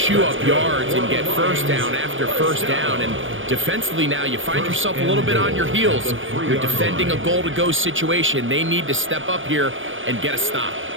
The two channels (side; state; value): left; late; 0.57 ms